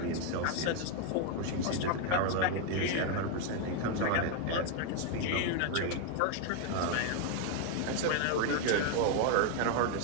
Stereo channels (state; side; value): different; both; correlation 0.00